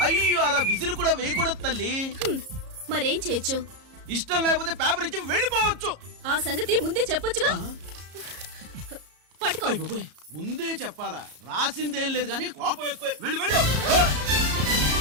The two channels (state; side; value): late; left; 34 ms